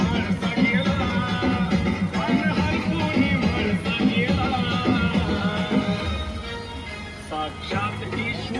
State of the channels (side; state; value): both; identical; correlation 1.00